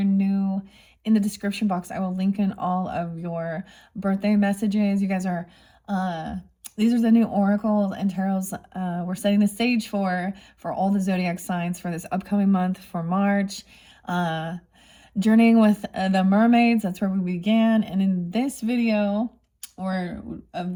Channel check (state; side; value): identical; both; correlation 1.00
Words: new. In the description box, I will link in all of your birthday messages. You guys are, these are the new oracles and tarots we're setting the stage for all the zodiac signs for this upcoming month for March. Journeying with the mermaids, that's where we began. And in this video, or